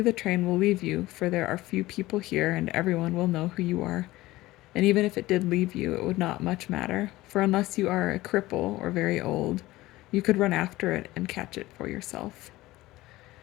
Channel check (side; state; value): right; quieter; 18.0 dB